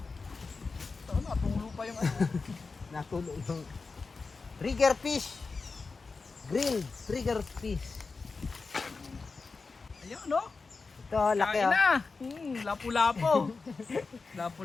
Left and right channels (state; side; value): quieter; right; 4.3 dB